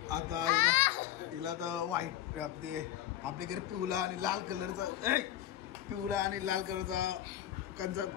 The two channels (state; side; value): quieter; right; 12.3 dB